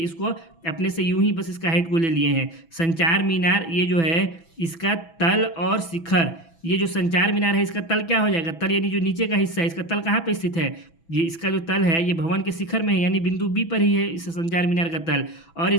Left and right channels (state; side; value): late; right; 6.0 ms